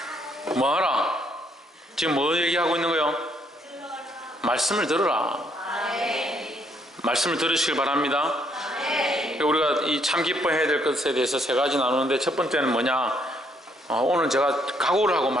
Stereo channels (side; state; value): both; normal; correlation 0.70